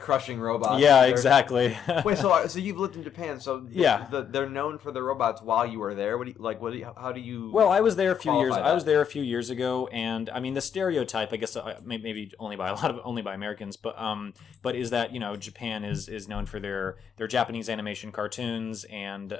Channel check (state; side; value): quieter; right; 8.1 dB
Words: robots. Yeah, exactly. Wait, so you've lived in Japan, so yeah, they're known for the robots while you were there. How do you? Well, I was there a few years. that? I was there a few years ago, and I mean the stereotype, I guess, maybe only by Americans, but is that, you know, Japan is known for their Japanese animation cartoons and